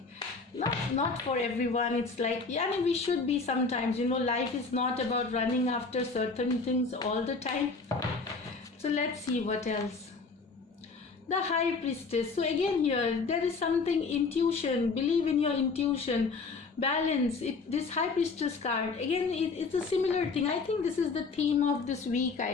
Not for everyone. It's like, we should be sometimes. Life is not about running after certain things all the time. So let's see what else. The High Priestess. So again here, there is something, intuition, believe in your intuition, balance. This High Priestess card, again, it's a similar thing. I think this is the theme of this week.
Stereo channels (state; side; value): quieter; right; 4.3 dB